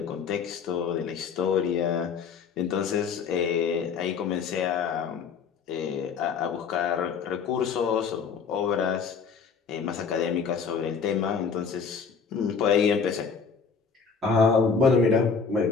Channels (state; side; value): quieter; right; 5.8 dB